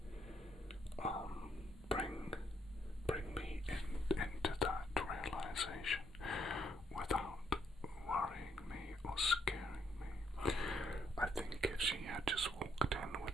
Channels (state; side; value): normal; both; correlation 0.72